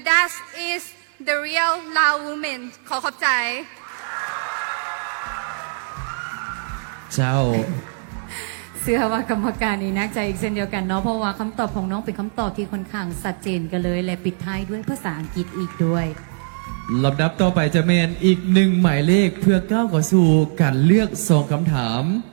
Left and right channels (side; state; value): left; silent; digital silence